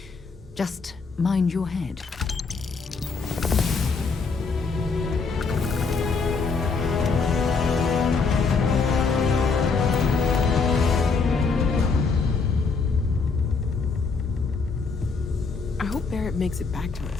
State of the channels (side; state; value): right; quieter; 4.6 dB